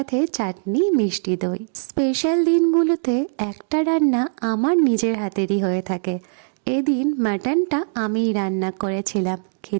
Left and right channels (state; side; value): silent; left; digital silence